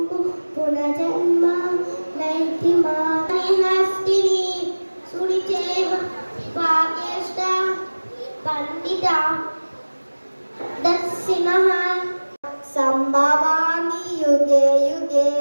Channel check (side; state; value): both; inverted; correlation -1.00